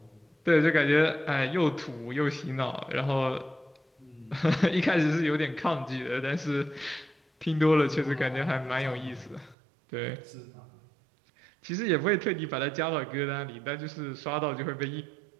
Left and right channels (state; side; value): drops out; left; at 9.6 s